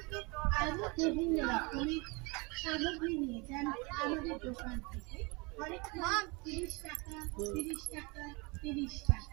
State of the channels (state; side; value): quieter; left; 28.2 dB